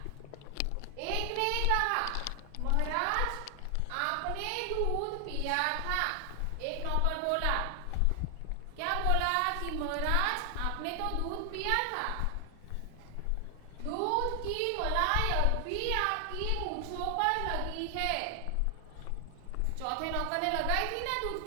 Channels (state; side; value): different; both; correlation 0.00